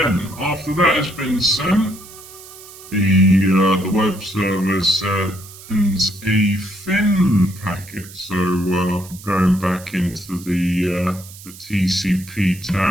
after that has been sent, the web server sends a fin packet. So going back into the TCP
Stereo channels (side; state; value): right; noise; hiss, 18 dB below the sound